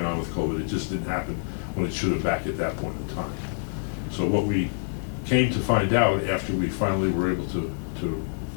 on with COVID, it just didn't happen when it should have back at that point in time. So what we came to find out after we finally were able to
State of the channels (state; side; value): silent; right; 61 dB below the other